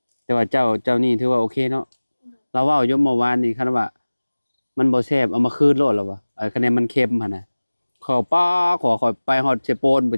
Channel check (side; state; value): both; inverted; correlation -1.00